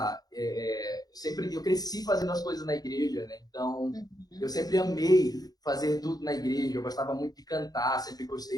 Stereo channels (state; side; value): late; right; 0.19 ms